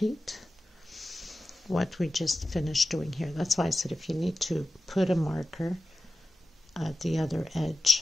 what we just finished doing here. That's why I said if you need to put a marker at the other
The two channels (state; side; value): normal; both; correlation 0.95